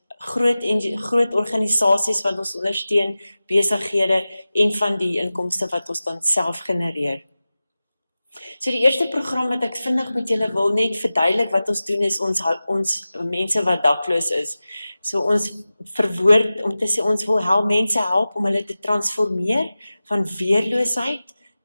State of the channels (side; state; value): both; inverted; correlation -0.96